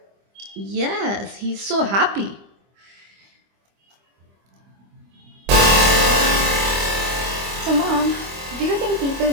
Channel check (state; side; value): late; left; 25 ms